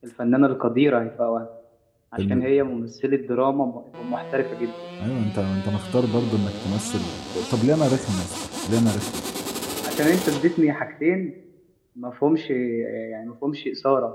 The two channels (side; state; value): both; identical; correlation 1.00